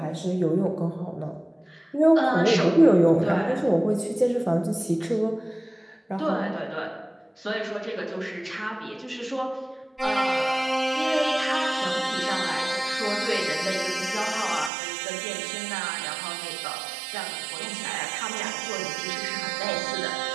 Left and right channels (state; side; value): drops out; left; at 14.7 s